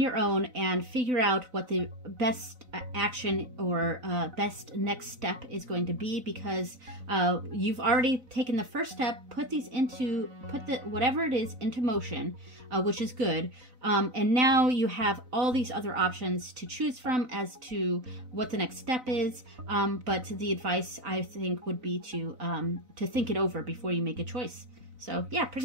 your own and figure out what the best action or best next step is going to be, because you've already taken the first step, put whatever it is into motion, which is good, and now you have all these other options to choose from as to what the next step is, but the advice I think would be to think it over before you make a choice. So yeah,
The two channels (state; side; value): late; left; 4.0 ms